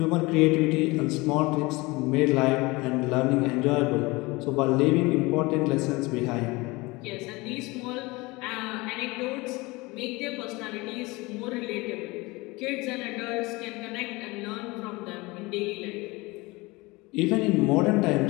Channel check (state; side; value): quieter; right; 23.3 dB